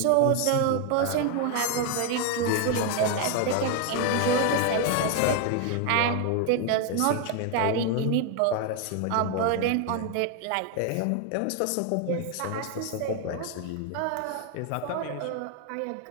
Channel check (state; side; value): different; both; correlation 0.01